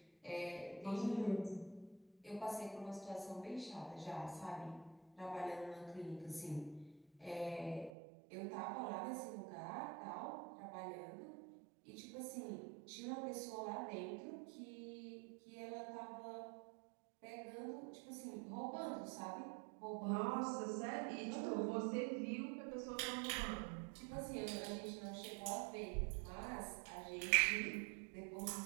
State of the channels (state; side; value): drops out; left; at 7.9 s